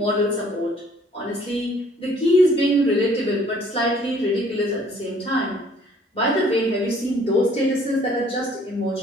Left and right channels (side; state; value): both; normal; correlation 0.58